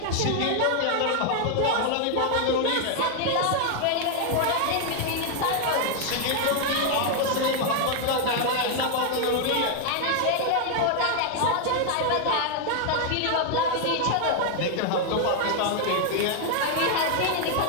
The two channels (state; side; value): different; both; correlation 0.00